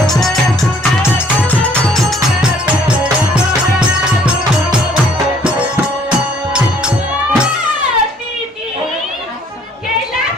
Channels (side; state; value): both; normal; correlation 0.61